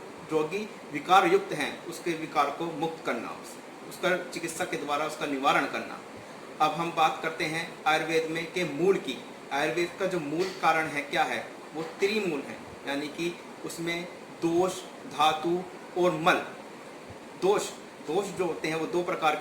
रोगी विकार युक्त हैं उसके विकार को मुक्त करना, उसका चिकित्सा के द्वारा उसका निवारण करना। अब हम बात करते हैं आयुर्वेद में के मूल की। आयुर्वेद का जो मूल कारण है क्या है, वो त्रिमूल है, यानी कि उसमें दोष, धातु और मल। दोष जो होते हैं वो 2 प्रकार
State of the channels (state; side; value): identical; both; correlation 1.00